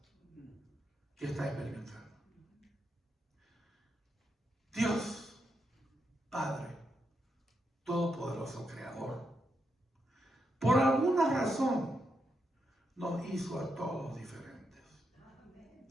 que está experimentando. Dios, Padre Todopoderoso, Creador, por alguna razón nos hizo a todos diferentes.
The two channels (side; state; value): both; normal; correlation 0.83